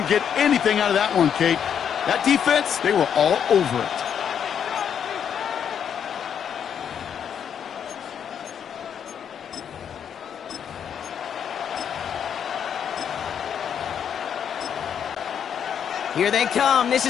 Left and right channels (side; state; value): right; quieter; 8.2 dB